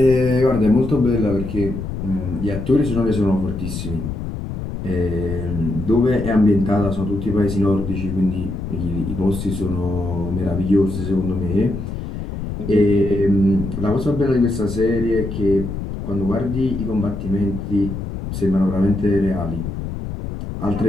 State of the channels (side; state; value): left; noise; rumble, 6 dB below the sound